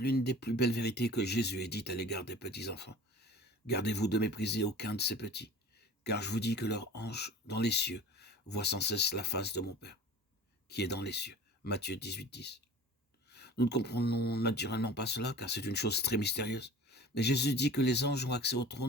des plus belles vérités que Jésus ait dites à l'égard des petits enfants. Gardez-vous de mépriser aucun de ces petits, car je vous dis que leur ange dans les cieux voit sans cesse la face de mon Père, qui est dans les cieux. Matthieu 18, 10. Nous ne comprenons naturellement pas cela, car c'est une chose très mystérieuse. Mais Jésus dit que les anges ont accès au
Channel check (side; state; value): both; normal; correlation 0.41